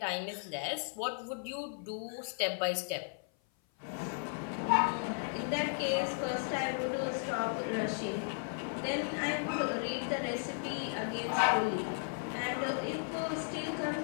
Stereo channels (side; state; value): right; silent; 54 dB below the other